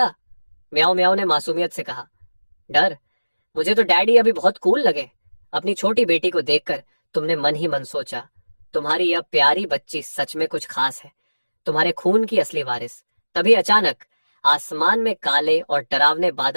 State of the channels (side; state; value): both; inverted; correlation -1.00